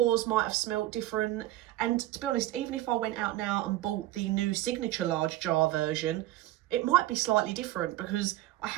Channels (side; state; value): left; quieter; 15.6 dB